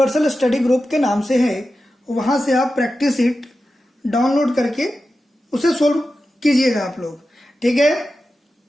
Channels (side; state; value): both; normal; correlation 0.92